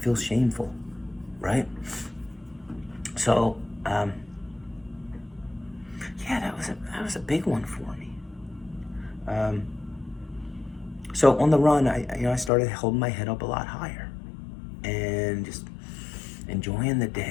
shameful, right? So, that was a big one for me. So on the run, I started holding my head up a lot higher, and just enjoying the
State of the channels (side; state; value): right; drops out; at 12.5 s